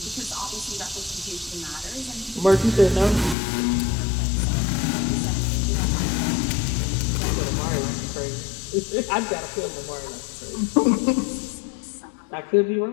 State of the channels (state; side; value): drops out; right; at 3.4 s